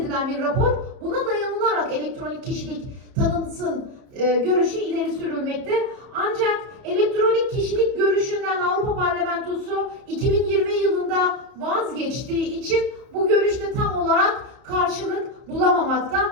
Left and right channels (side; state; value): left; late; 31 ms